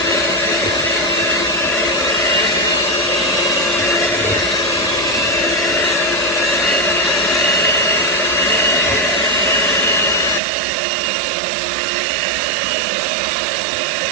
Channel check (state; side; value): drops out; left; at 10.4 s